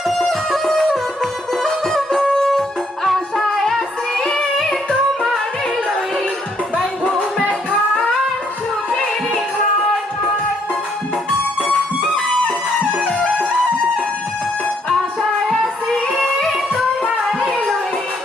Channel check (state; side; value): normal; both; correlation 0.70